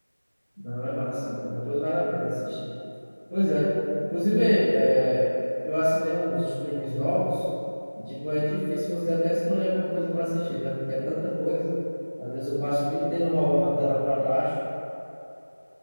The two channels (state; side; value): inverted; both; correlation -1.00